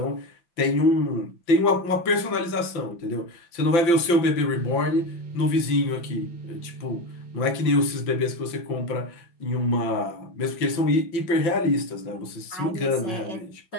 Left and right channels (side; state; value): right; late; 5.8 ms